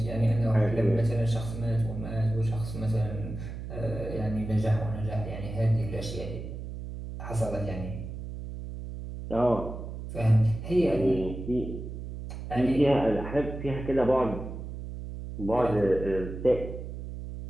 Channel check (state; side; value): noise; right; hum, 8 dB below the sound